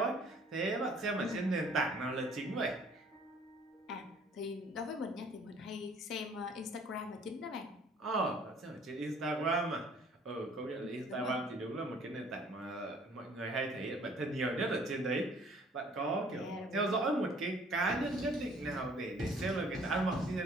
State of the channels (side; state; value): both; normal; correlation 0.56